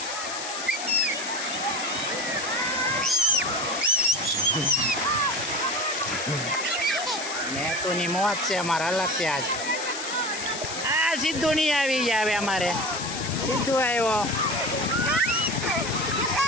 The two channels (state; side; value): noise; left; hiss, 7 dB below the sound